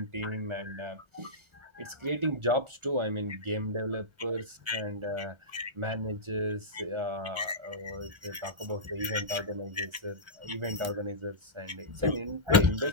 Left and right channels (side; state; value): left; late; 1.3 ms